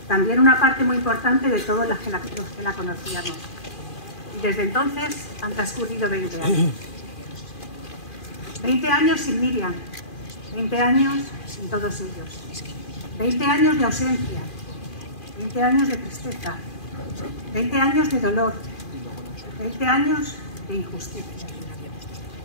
también una parte muy importante de todos los que la conocíamos. Y desde entonces han transcurrido 20 años. 20 años sin Miriam, 20 años sin todos ellos. 20 años de ausencia, 20 años de tristeza, 20 años de dolor, 20 años de injusticia.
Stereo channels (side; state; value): right; late; 2.4 ms